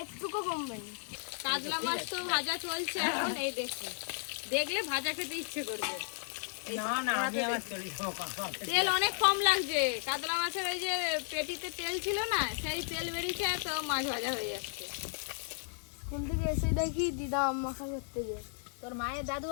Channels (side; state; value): right; silent; digital silence